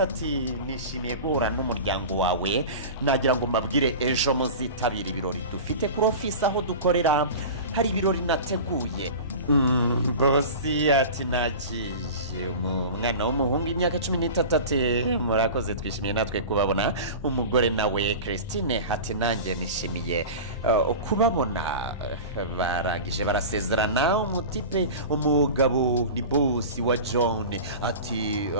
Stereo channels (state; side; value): inverted; both; correlation -0.33